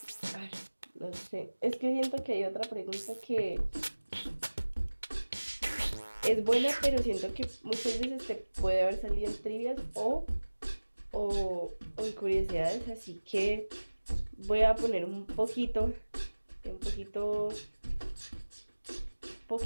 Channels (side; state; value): both; inverted; correlation -1.00